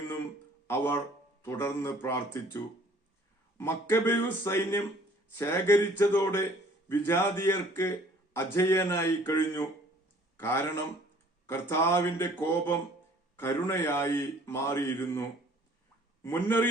അവർ തുടർന്ന് പ്രാർത്ഥിച്ചു. മക്കബേയൂസ് സൈന്യം ശേഖരിച്ചതോടെ വിജാതീയർക്ക് അജയ്യനായി കഴിഞ്ഞു. കാരണം കർത്താവിന്റെ കോപം കരുണയായി മാറിയിരുന്നു.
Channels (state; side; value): normal; both; correlation 0.55